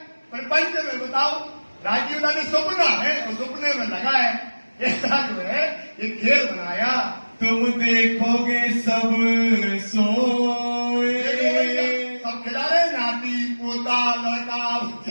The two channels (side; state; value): both; inverted; correlation -1.00